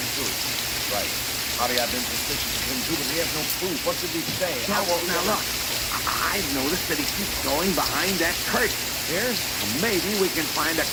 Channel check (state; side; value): identical; both; correlation 1.00